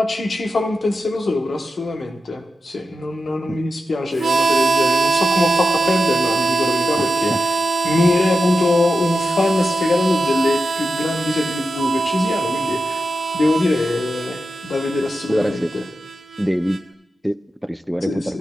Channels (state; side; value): normal; both; correlation 0.90